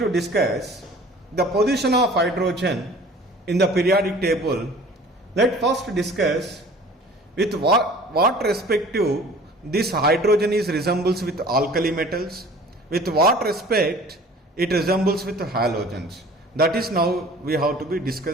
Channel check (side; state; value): both; normal; correlation 0.47